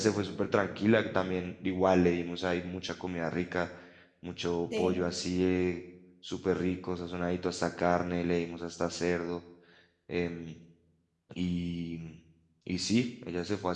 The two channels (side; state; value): both; identical; correlation 1.00